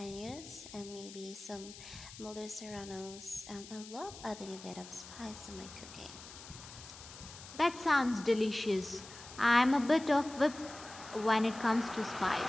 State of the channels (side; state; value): left; noise; hiss, 15 dB below the sound